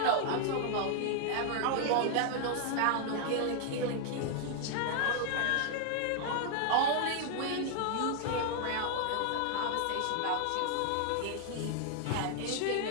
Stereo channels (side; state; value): both; different; correlation 0.00